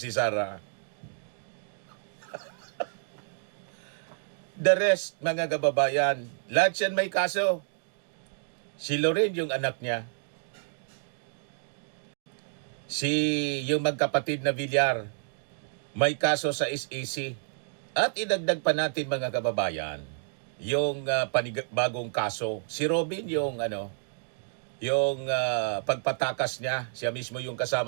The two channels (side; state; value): left; silent; digital silence